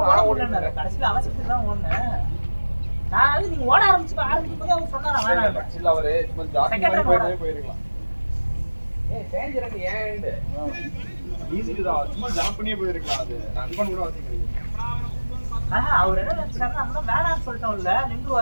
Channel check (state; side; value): inverted; both; correlation -1.00